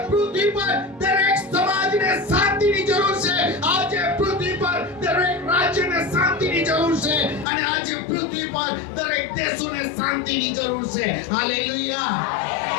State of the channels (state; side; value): drops out; right; at 7.5 s